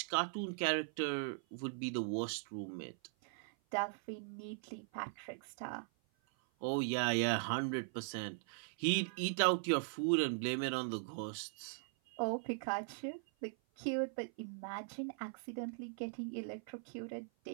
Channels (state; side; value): silent; left; 51 dB below the other